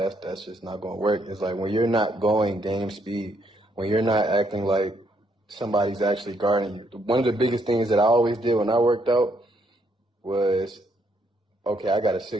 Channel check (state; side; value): normal; both; correlation 0.72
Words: just not going to work. It's like when you're not going game speed, when you're not acting like somebody's actually guarding you. One of the biggest things that I always did when I worked out was, okay, I got a